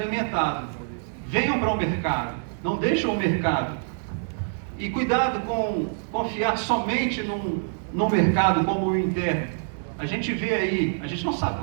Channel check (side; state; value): left; silent; digital silence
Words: Venham para o mercado, não deixem o mercado. E cuidado com confiar somente num mercado como o interno. A gente vê aí, a gente não sabe